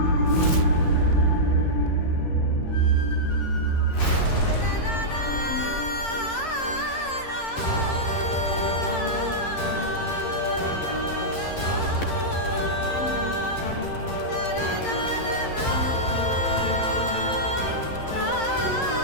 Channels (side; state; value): right; late; 11 ms